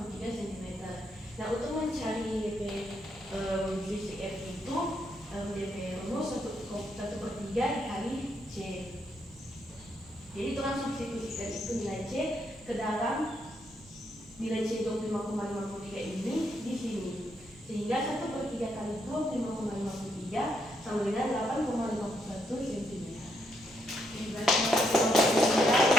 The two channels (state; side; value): normal; both; correlation 0.77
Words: cm. Nah, untuk mencari DP sisi F itu DP rumus 1/3 dikali C. Jadi itu langsung substitusikan itu nilai C ke dalam nilai C 25,53 ini di sini. Sehingga 1/3 kali 25,53 sama dengan 8,51 cm.